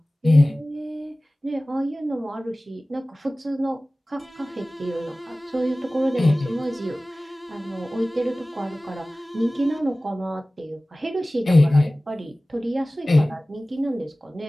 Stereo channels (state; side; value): normal; both; correlation 0.97